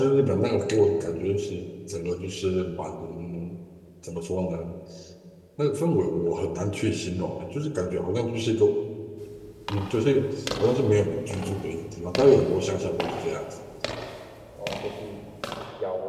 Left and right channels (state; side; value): identical; both; correlation 1.00